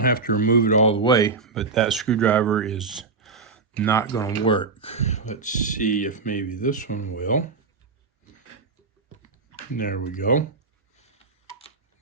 have to remove it all the way, but that screwdriver is not going to work. Let's see if maybe this one will. There we go.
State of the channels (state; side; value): quieter; left; 4.3 dB